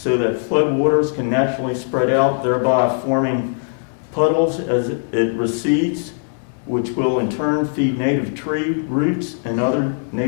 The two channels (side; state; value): right; silent; 66 dB below the other